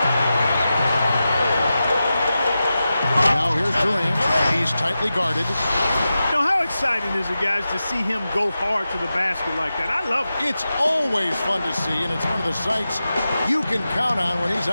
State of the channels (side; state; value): both; inverted; correlation -0.92